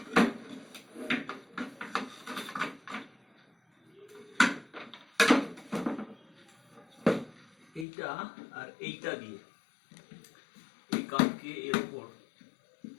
এইটা আর এইটা দিয়ে এই কাঠকে এর উপর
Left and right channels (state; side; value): drops out; right; at 7.9 s